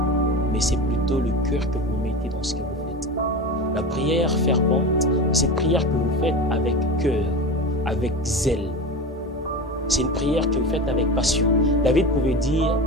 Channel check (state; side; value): normal; both; correlation 0.27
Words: mais c'est plutôt le cœur que vous mettez dans ce que vous faites. La prière fervente, c'est une prière que vous faites avec cœur, avec zèle. C'est une prière que vous faites avec passion. David pouvait dire: